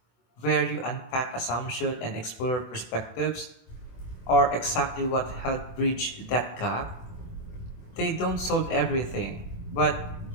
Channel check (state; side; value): late; right; 24 ms